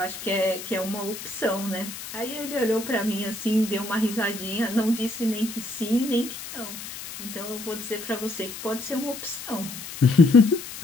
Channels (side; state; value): left; noise; hiss, 11 dB below the sound